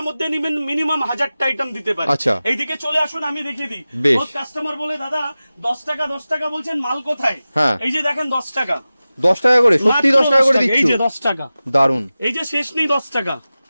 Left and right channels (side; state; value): both; inverted; correlation -0.96